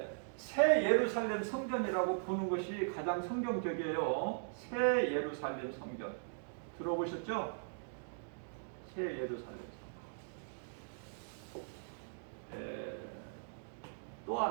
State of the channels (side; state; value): left; silent; digital silence